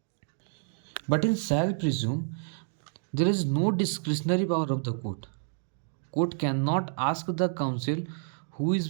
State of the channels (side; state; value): left; silent; digital silence